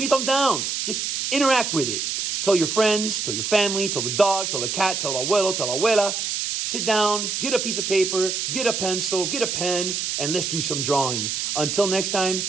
a thumbs down. Just interact with it. Tell your friends, tell your family, tell the dog, tell the cat, tell abuelo, tell abuela. Sit down, get a piece of paper, get a pencil, get a pen, and let's do some drawing. Until next time,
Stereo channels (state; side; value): noise; right; hiss, 2 dB below the sound